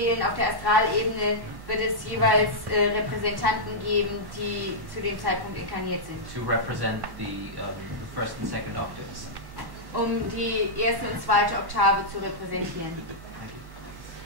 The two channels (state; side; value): late; left; 1.1 ms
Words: auf der Astralebene wird es jeweils Repräsentanten geben, die zu dem Zeitpunkt inkarniert sind. To represent the first and second octaves. Um die erste und zweite Oktave zu repräsentieren.